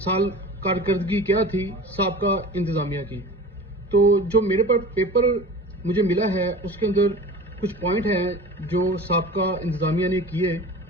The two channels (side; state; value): both; normal; correlation 0.37